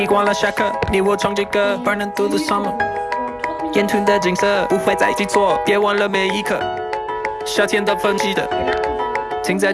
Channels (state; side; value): identical; both; correlation 1.00